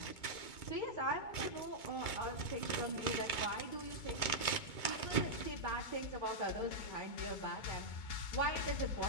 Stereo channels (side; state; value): right; late; 2.2 ms